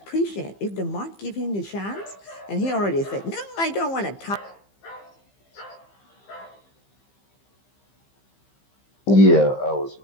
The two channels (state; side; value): late; right; 15 ms